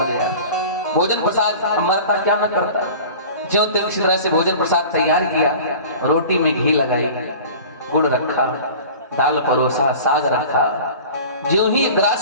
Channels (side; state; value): both; inverted; correlation -0.40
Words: गया। भोजन प्रसाद मरता क्या न करता, ज्यों त्यों इसी तरह से भोजन प्रसाद तैयार किया। रोटी में घी लगाई, गुड़ रखा, दाल परोसा, साग रखा। ज्यों ही